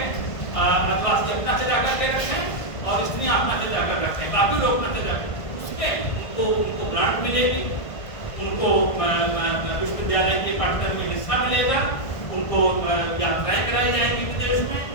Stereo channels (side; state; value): right; late; 1.5 ms